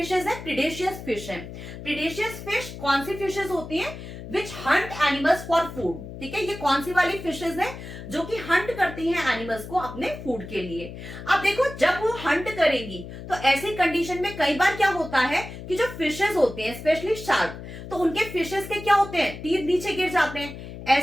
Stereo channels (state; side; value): noise; left; hum, 11 dB below the sound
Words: है, प्रीडेशियस फिश है। प्रीडेशियस फिश कौन सी फिशेज होती है, witch hunt animals for food. ठीक है, ये कौन सी वाली फिशेज है जो कि हंट करती हैं एनिमल्स को अपने फूड के लिए। अब देखो, जब वो हंट करेंगी तो ऐसी कंडीशन में कई बार क्या होता है कि जो फिशेज होते हैं, स्पेशली शार्क, तो उनके फिशेज के क्या होते हैं, टीथ नीचे गिर जाते हैं।